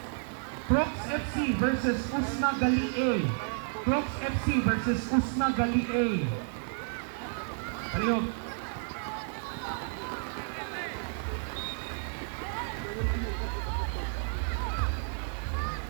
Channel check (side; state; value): left; silent; 57 dB below the other